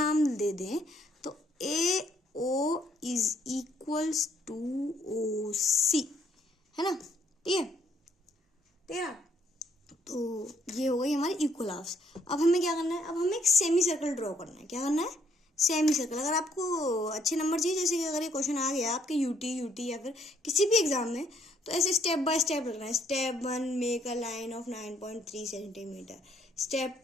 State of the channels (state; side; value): normal; both; correlation 0.68